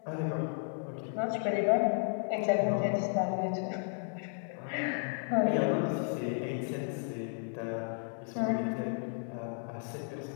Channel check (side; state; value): right; silent; 55 dB below the other